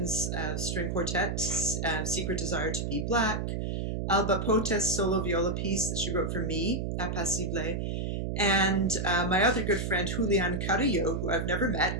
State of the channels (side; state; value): right; noise; hum, 2 dB below the sound